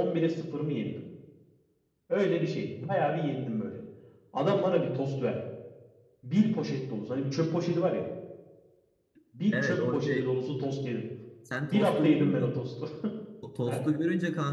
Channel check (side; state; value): both; identical; correlation 1.00